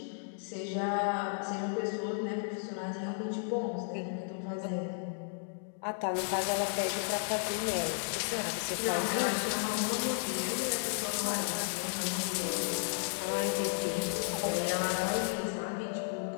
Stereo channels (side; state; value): right; silent; digital silence